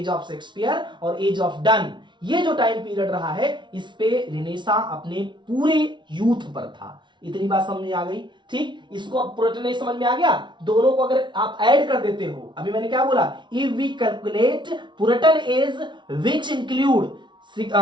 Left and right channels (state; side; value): late; left; 0.23 ms